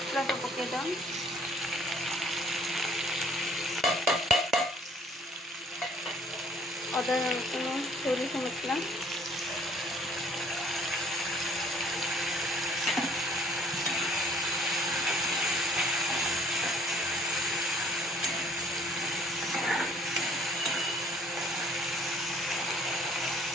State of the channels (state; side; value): normal; both; correlation 0.59